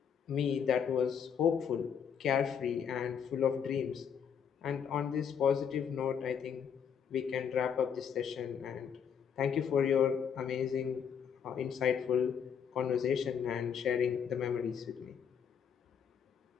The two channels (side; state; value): right; quieter; 7.5 dB